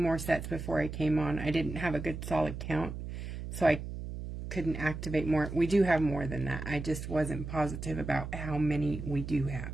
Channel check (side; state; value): right; noise; hum, 7 dB below the sound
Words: sets before I came on. I didn't have a good solid count, so I couldn't activate more. We do have more than that. I just wasn't positive about how many we do have.